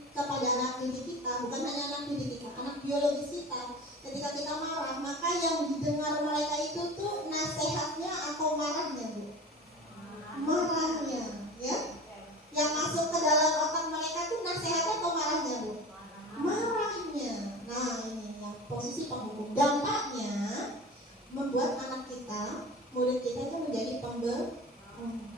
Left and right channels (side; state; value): both; normal; correlation 0.35